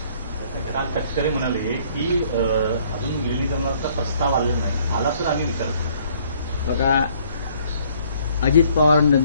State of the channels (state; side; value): inverted; both; correlation -0.61